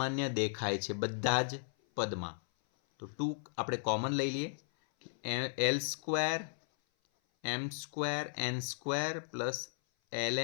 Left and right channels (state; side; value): silent; right; 54 dB below the other